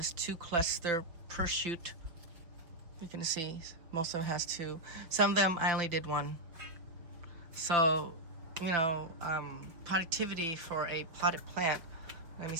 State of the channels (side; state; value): left; late; 5.8 ms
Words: 2 cluster per shoot. You can see most of them has 2. Some of them I only did 1. So, you know, productivity for a potted plant, let me